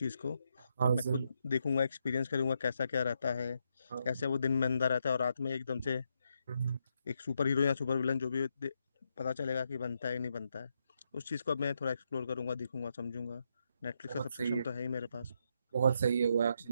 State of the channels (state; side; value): inverted; both; correlation -0.80